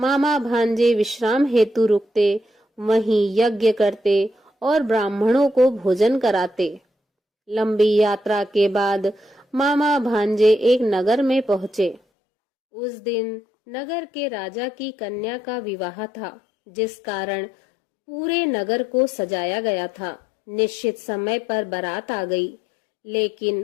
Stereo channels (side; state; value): right; drops out; at 12.0 s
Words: भांजे विश्राम हेतु रुकते, वहीं यज्ञ करते और ब्राह्मणों को भोजन कराते। लंबी यात्रा के बाद मामा भांजे एक नगर में पहुंचे। उस दिन नगर के राजा की कन्या का विवाह था, जिस कारण पूरे नगर को सजाया गया था। निश्चित समय पर बारात आ गई,